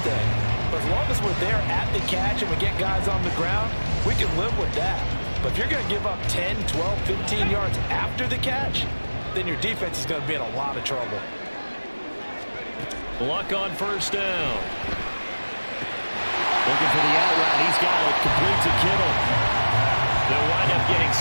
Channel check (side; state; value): both; inverted; correlation -1.00